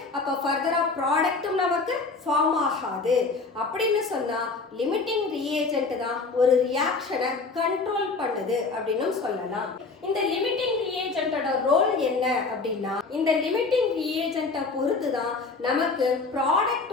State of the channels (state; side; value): quieter; right; 4.1 dB